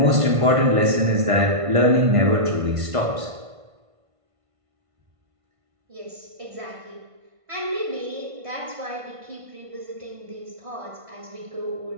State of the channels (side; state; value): left; late; 1.5 ms